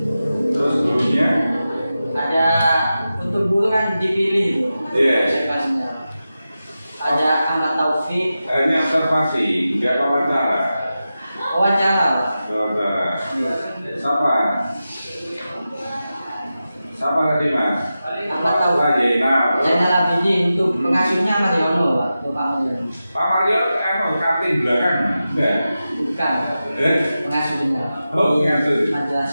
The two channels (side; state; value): both; inverted; correlation -0.92